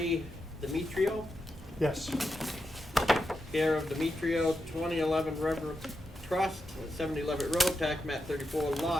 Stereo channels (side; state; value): both; normal; correlation 0.87